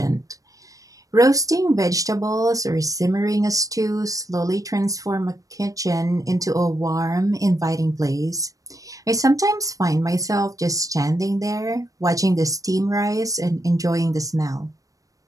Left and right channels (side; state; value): left; late; 0.16 ms